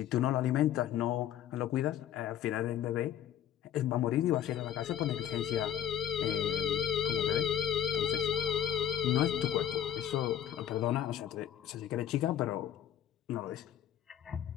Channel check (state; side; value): quieter; right; 10.1 dB